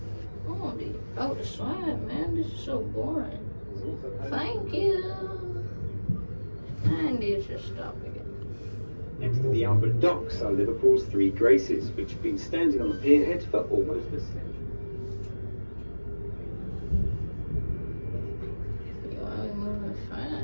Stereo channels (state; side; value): inverted; both; correlation -1.00